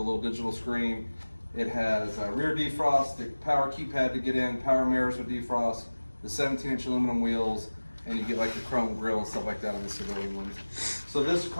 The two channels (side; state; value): both; inverted; correlation -1.00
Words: digital screen. It has rear defrost, the power keypad to get in, power mirrors with defrost, the 17-inch aluminum wheels, and you get like the chrome grille and stuff like that on the civilian ones. So this